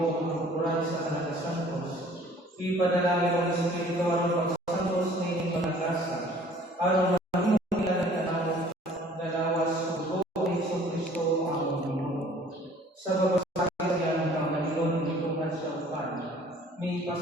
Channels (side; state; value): both; normal; correlation 0.53